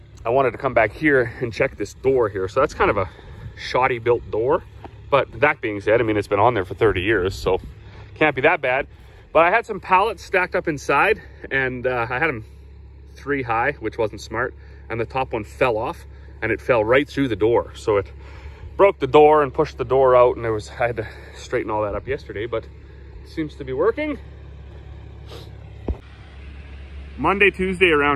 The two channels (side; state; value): both; identical; correlation 1.00